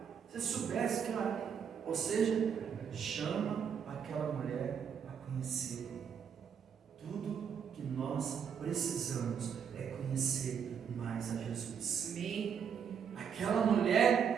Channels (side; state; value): left; quieter; 7.4 dB